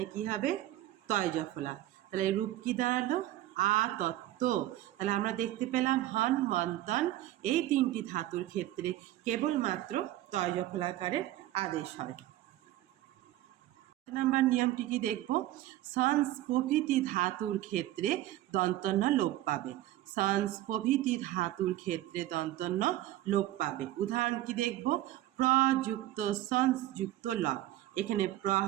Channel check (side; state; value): left; quieter; 14.8 dB